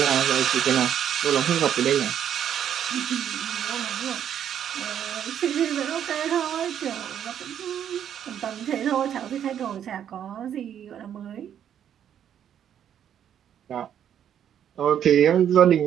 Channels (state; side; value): quieter; left; 9.5 dB